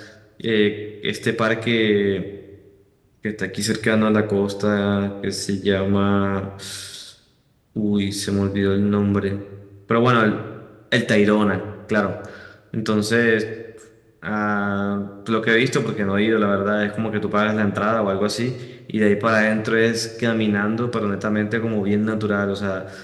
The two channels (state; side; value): identical; both; correlation 1.00